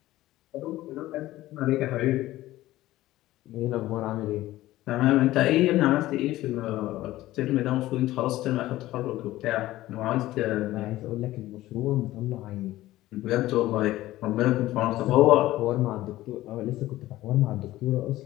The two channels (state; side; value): quieter; right; 16.1 dB